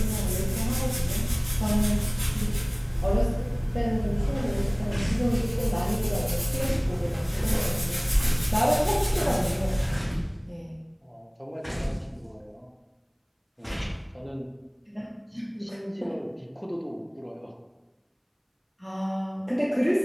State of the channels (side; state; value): both; identical; correlation 1.00